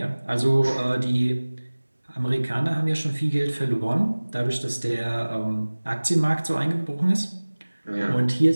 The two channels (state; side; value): inverted; both; correlation -1.00